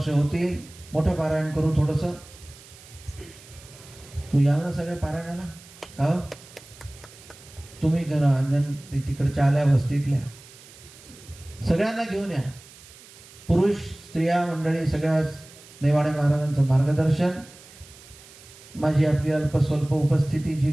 होतील, मोठं पारायण करू. थोडंसं तू याल ना सगळ्या पारायणाला? हो, तुम्ही करा. अंजन तिकडच्या आल्या वस्तीतल्या सगळ्यांना घेऊन या. पुरुष स्त्रिया मंडळी सगळ्याच नेवाडे महाराजांचं मार्गदर्शन. माझी आपली अल्पस्वल्प उपस्थिती जी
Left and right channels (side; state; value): right; noise; hiss, 21 dB below the sound